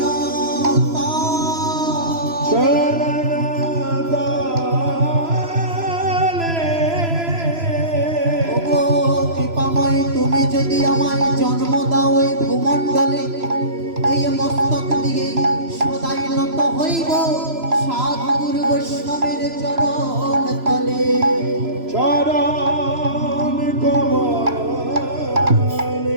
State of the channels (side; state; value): left; late; 3.0 ms